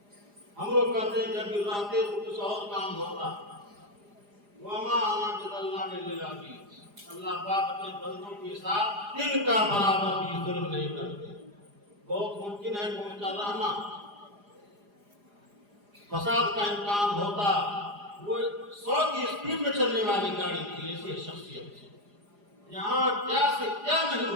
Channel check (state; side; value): late; left; 4.9 ms